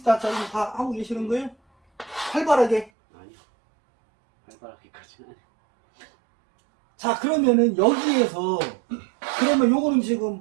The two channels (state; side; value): drops out; left; at 2.9 s